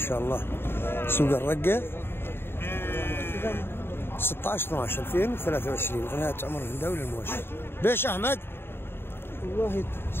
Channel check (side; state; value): right; late; 0.11 ms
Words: الله. سوق الرقة 16/12/2023 قناة عمر الهنداوي للمواشي. بيش أحمد؟ والله